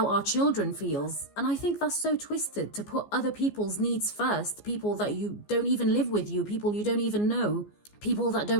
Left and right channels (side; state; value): right; late; 14 ms